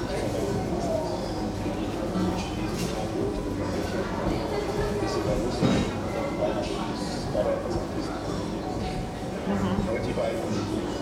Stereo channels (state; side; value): identical; both; correlation 1.00